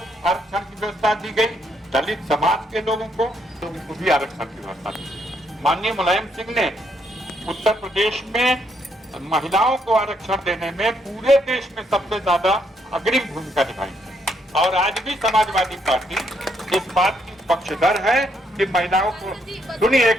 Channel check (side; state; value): both; normal; correlation 0.74